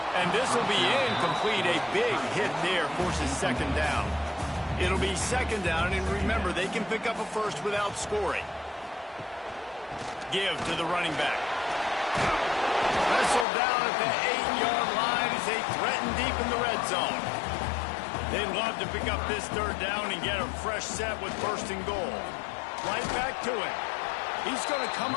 And this will be incomplete. A big hit there forces second down. It'll be second down, and remember, they can pick up a first without scoring. Give to the running back. Wrestled down at the 8-yard line as they threaten deep in the red zone. They'd love to pick up this third down and get a fresh set with first and goal. Right back to it. He's going to come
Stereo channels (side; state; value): right; drops out; at 13.5 s